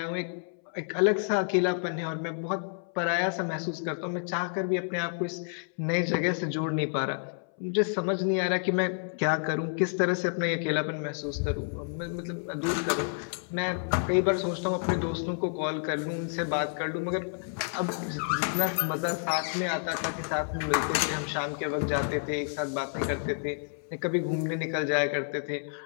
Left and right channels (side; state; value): right; silent; 58 dB below the other